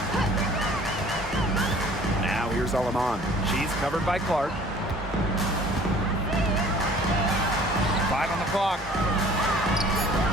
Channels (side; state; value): both; normal; correlation 0.51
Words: Now here's Alaman. She's covered by Clark. 5 on the clock.